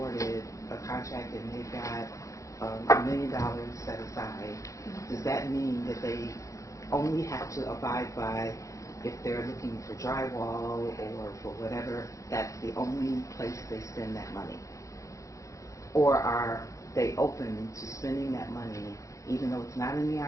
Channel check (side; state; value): right; late; 0.15 ms